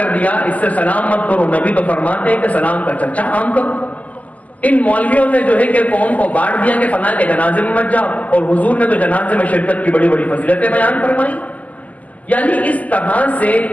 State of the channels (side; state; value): right; late; 0.075 ms